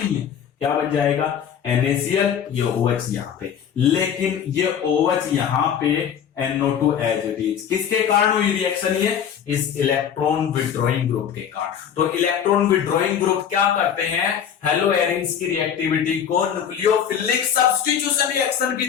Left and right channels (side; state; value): right; quieter; 8.4 dB